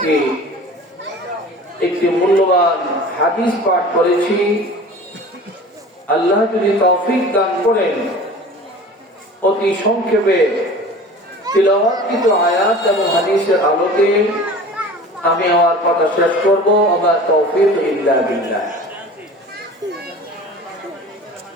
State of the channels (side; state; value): both; normal; correlation 0.40